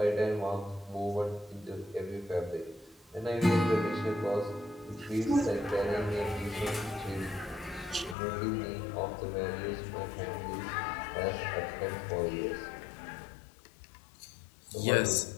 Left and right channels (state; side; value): drops out; right; at 8.2 s